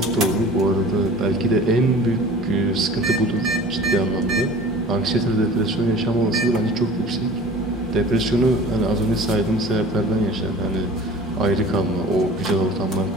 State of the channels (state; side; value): normal; both; correlation 0.43